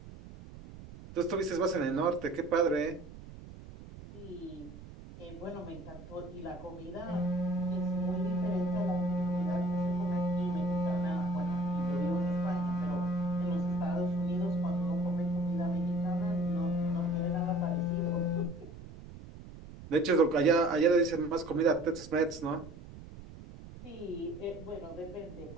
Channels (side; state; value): right; noise; rumble, 15 dB below the sound